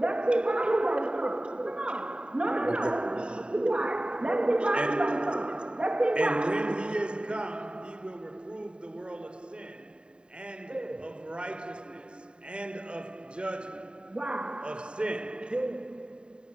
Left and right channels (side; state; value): left; late; 0.050 ms